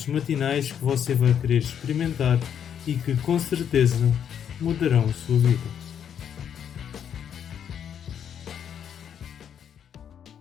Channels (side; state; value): right; quieter; 8.7 dB